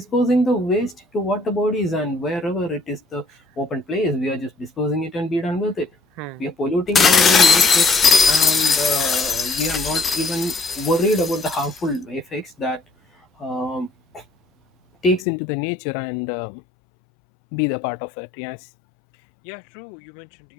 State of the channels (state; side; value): drops out; right; at 15.2 s